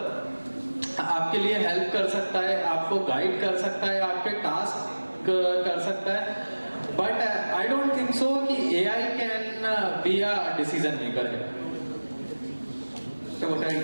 आपके लिए हेल्प कर सकता है, आपको गाइड कर सकता है, आपके टास्क कर सकता है. But I don't think so कि AI can be a decision maker है. So what are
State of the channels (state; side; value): inverted; both; correlation -1.00